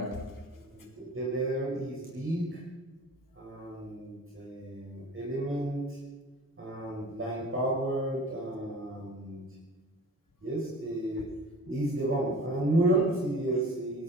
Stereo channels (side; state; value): both; normal; correlation 0.42